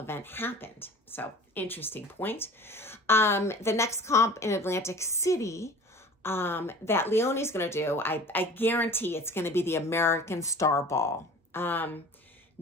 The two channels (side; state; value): both; normal; correlation 0.43